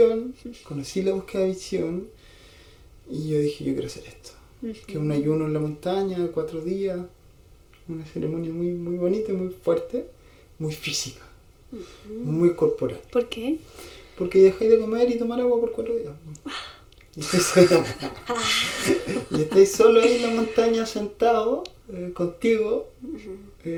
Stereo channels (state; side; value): identical; both; correlation 1.00